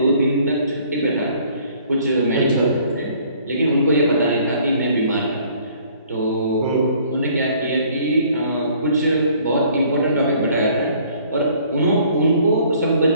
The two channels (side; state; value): both; inverted; correlation -0.58